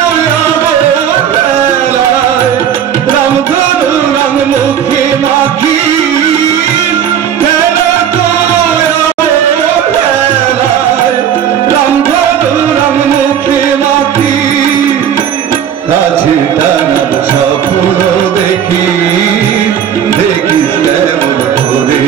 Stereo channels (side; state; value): left; quieter; 9.0 dB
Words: খেলায় রামধনু রাম মুখে মাখি খেলা তুই খেলায় রামধনু রাম মুখে মাখি কাছে টানার স্বপ্ন দেখি দেখিস কেমন করে